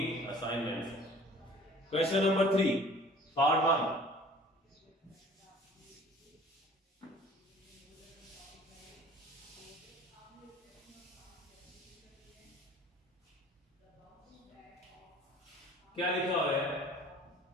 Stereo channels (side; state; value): both; normal; correlation 0.48